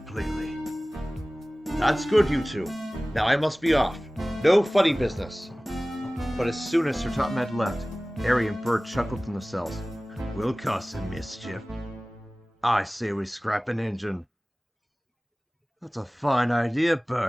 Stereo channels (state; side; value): normal; both; correlation 0.98